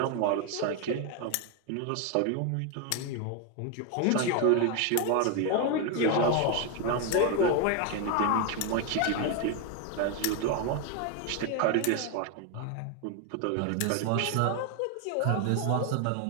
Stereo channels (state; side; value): different; both; correlation 0.01